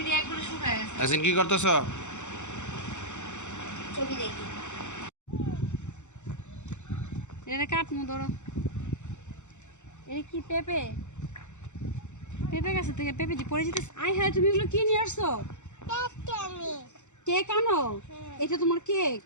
আসেন, কি করতেছ? ছবি দেখি। এটা কাটমু ধরো। এটা কি পেঁপে? পেঁপে গাছের থেকে পেঁপে যে পড়ে যেতেছে। আয় হ্যাঁ, তুমি এগুলো কি নিয়ে আসছো? কেক আনো? এটা তোমার কেক?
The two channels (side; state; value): right; late; 0.84 ms